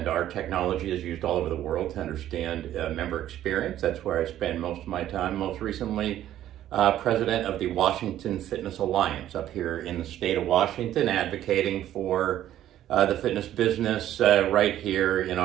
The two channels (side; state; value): left; quieter; 12.3 dB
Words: our technology is used all over the world to understand member experience. That's where I spend most of my time. Most recently, president of the Washington Fitness Alliance up here in the state of Washington, advocating for the fitness business right here in